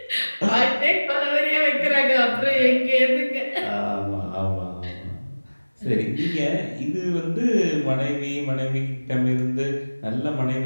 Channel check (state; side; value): inverted; both; correlation -1.00